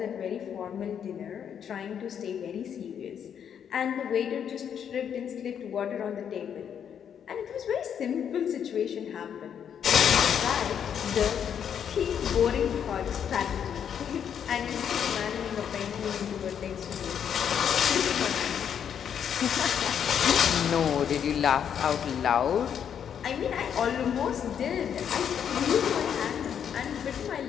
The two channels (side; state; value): right; quieter; 8.4 dB